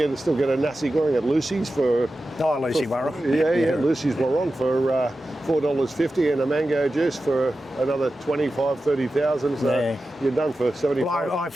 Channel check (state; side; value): normal; both; correlation 0.93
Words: still get a nasi goreng at Lucy's for. Lucy Warong. Lucy's Warong for $4.50 and a mango juice for another 25,000-30,000. So you're done for 75. Well, I